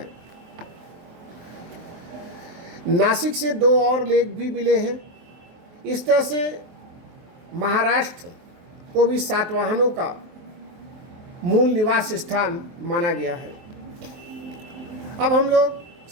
नासिक से 2 और लेख भी मिले हैं। इस तरह से महाराष्ट्र को भी सातवाहनों का मूल निवास स्थान माना गया है। अब हम लोग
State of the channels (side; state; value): left; late; 23 ms